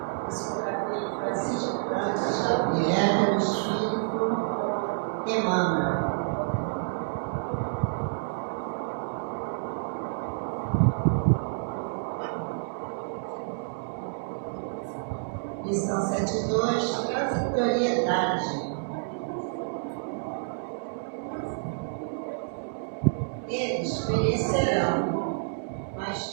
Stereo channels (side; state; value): left; silent; digital silence